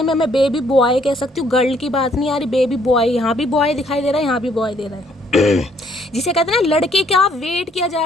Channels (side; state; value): both; normal; correlation 0.66